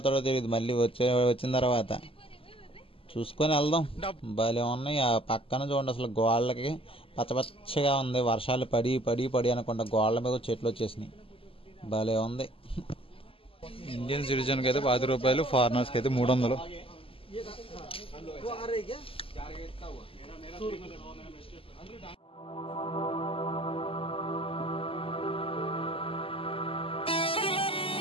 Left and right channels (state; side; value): late; right; 0.26 ms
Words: తెలియదు. మళ్ళీ వచ్చిన తర్వాత చూసుకొని వెళ్దాం. భలే ఉన్నాయి. ఆ పక్కన చూడండి, అసలు గోళ్ళకి పచ్చగా ఉంది. వర్షాలు పడి అనకుండా గోళ్ళ మీద చెట్లు వచ్చేసినాయి. భలే ఉంది. ఇండియన్ సిటిజన్కి అయితే 10 రూపాయలు, ఫారినర్స్కి అయితే 300.